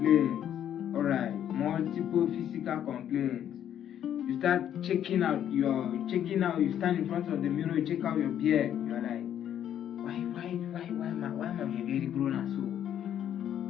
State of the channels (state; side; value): quieter; right; 10.2 dB